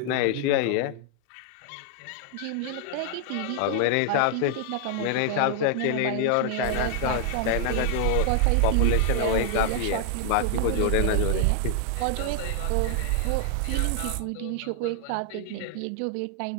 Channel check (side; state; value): both; different; correlation 0.00